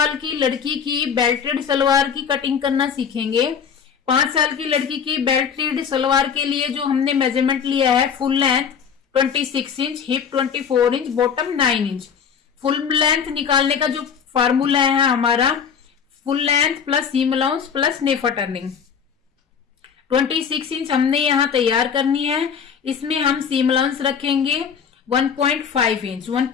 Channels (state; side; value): quieter; right; 7.0 dB